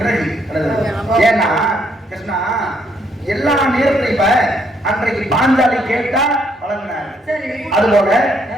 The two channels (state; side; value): normal; both; correlation 0.71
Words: ஏன்னா கிருஷ்ணா எல்லா நேரத்திலும் இப்ப அன்றைக்கு பாஞ்சாலி கேட்டா வழங்கினார். அதுபோல